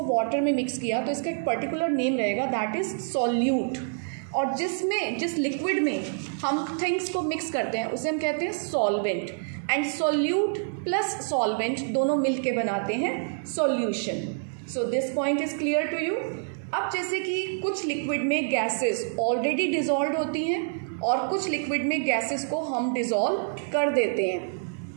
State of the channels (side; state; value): left; silent; digital silence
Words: वाटर में मिक्स किया तो इसका एक पर्टिकुलर नेम रहेगा, दैट इज सॉल्यूट. और जिस लिक्विड में हम थिंग्स को मिक्स करते हैं उसे हम कहते हैं solvent. And solute plus solvent दोनों मिलके बनाते हैं solution. So this point is clear to you. अब जैसे कि कुछ लिक्विड में गैसेस ऑलरेडी डिजॉल्व होती हैं और कुछ लिक्विड में गैसेस को हम डिजॉल्व कर देते हैं.